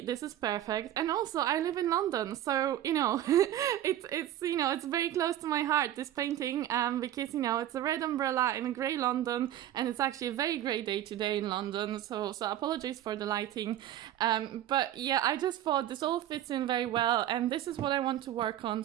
This is perfect. And also I live in London, so it's very close to my heart, this painting, because it's a red umbrella in a grey London, and it's actually a very grey day today in London, so apologies for the lighting. But yeah, I just thought this all fits in very well, and this is what I want to work on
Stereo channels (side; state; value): left; quieter; 12.2 dB